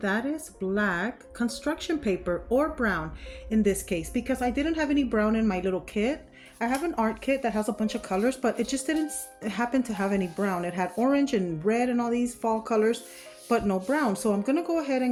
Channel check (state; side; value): identical; both; correlation 1.00